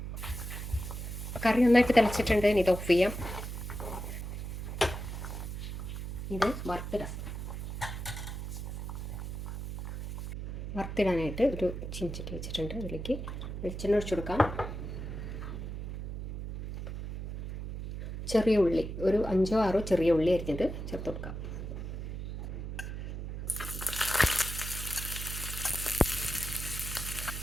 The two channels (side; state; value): right; noise; hum, 6 dB below the sound